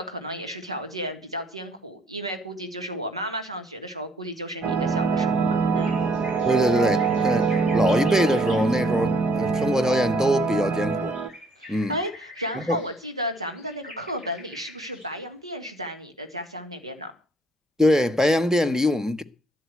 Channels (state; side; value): normal; both; correlation 0.65